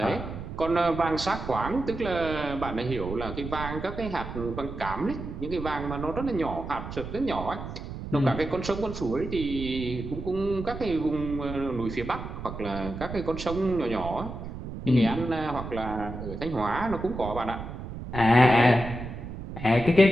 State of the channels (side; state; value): right; noise; rumble, 8 dB below the sound